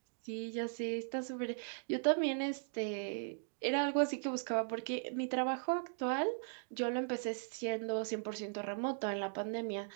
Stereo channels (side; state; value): left; silent; digital silence